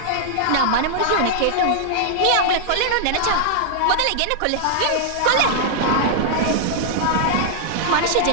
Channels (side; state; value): both; different; correlation -0.01